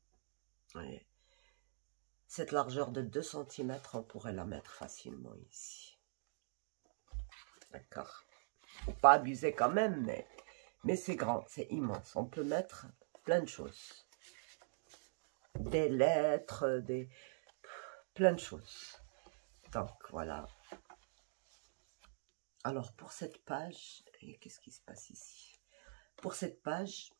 ouais. Cette largeur de 2 cm, on pourrait la mettre facilement ici. D'accord? Faut pas abuser quand même, mais c'est grand, c'est immense. On peut mettre plein de choses. Des lettres, plein de choses. Donc, voilà. Alors, pour cette page, qu'est-ce qui se passe ici? Pour cette page,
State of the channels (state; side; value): silent; left; digital silence